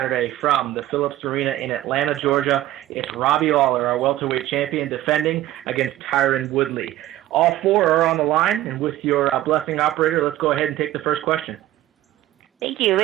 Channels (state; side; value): quieter; left; 14.5 dB